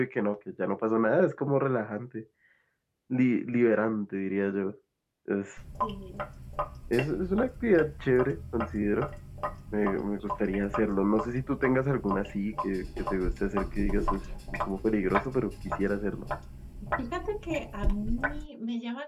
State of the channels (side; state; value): both; identical; correlation 1.00